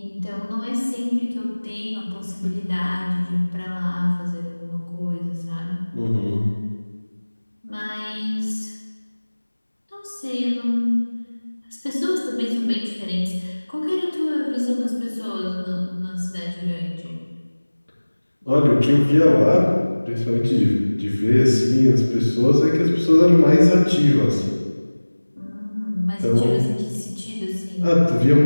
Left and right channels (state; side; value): inverted; both; correlation -1.00